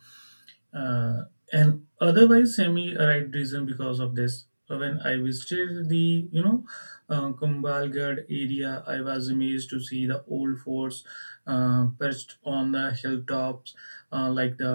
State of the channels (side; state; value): both; inverted; correlation -1.00